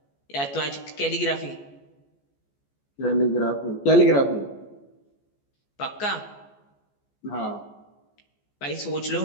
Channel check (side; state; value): right; late; 14 ms